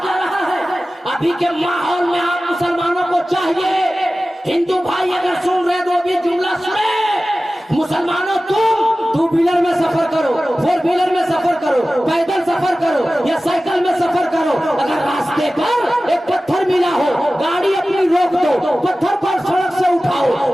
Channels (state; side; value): normal; both; correlation 0.96